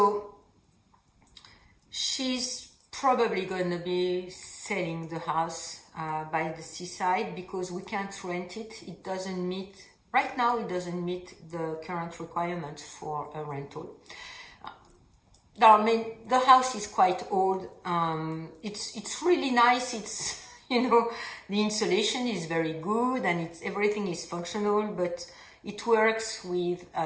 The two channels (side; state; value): both; identical; correlation 1.00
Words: she's probably going to be selling the house by the seaside, because we can't rent it. It doesn't meet, right now it doesn't meet the current requirements for a rental. The house is quite old. It's really nice. It's, the insulation is very good, and everything is functional, but it works with